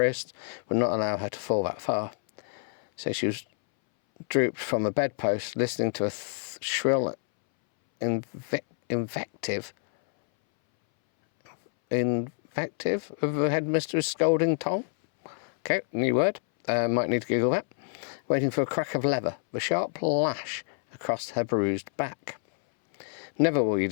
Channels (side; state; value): right; silent; 60 dB below the other